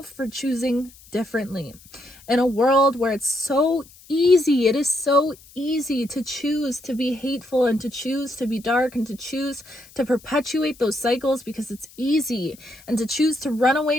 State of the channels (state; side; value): noise; left; hiss, 24 dB below the sound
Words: for choosing differently. In a world where it's so easy, it is so easy to choose to be hateful and to choose to be dark and to choose to perpetuate those cycles because it's easy, and to choose to run